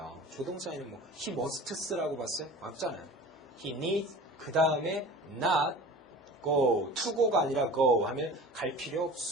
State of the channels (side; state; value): both; normal; correlation 0.39